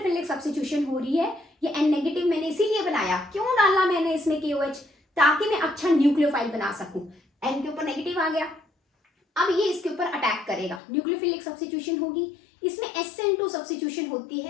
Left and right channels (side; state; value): right; drops out; at 10.8 s